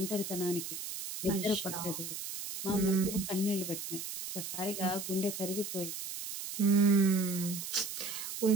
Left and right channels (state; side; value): noise; right; hiss, 7 dB below the sound